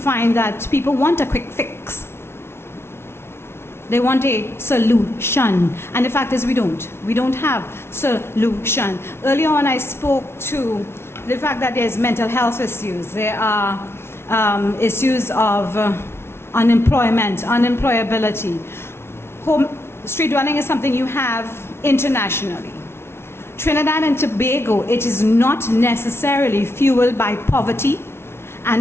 that people want a quick fix. They want a solution. And the fact is we don't. We don't have solution. Earlier on I spoke to the fact that there's mental health issues. There are issues of unemployment, unemployability. Street dwelling is something you have internationally. Trinidad and Tobago, it is not necessarily fueled by poverty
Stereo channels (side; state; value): right; late; 0.12 ms